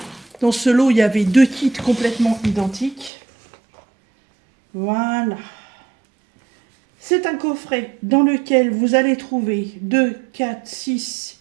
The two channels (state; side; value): drops out; left; at 3.1 s